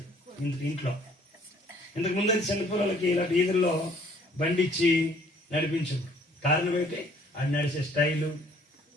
ఇంట్లో. ఇంతకు ముందు అయితే చిన్నపిల్లలకి ఇలాంటి ఈదుల్లో బండి ఇచ్చి నడిపించు. కారణం ఏంటి? ఆడి నడిచే స్టైలు,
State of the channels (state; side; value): normal; both; correlation 0.59